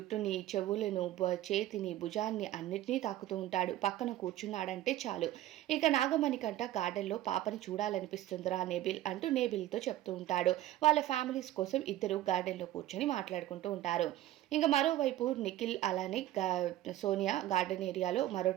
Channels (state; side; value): quieter; left; 14.1 dB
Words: చెవులను, చేతిని, భుజాన్ని అన్నిటినీ తాకుతూ ఉంటాడు. పక్కన కూర్చున్నాడంటే చాలు. ఇక నాగమణికంట గార్డెన్‌లో పాపని చూడాలనిపిస్తుందిరా నేబిల్ అంటూ నేబిల్‌తో చెప్తూ ఉంటాడు. వాళ్ళ ఫ్యామిలీస్ కోసం ఇద్దరు గార్డెన్‌లో కూర్చొని మాట్లాడుకుంటూ ఉంటారు. ఇంక మరోవైపు నిఖిల్ అలానే సోనియా గార్డెన్ ఏరియాలో మరో